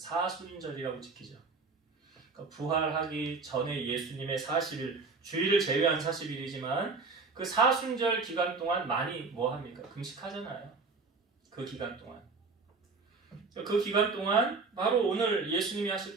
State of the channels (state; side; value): quieter; left; 4.3 dB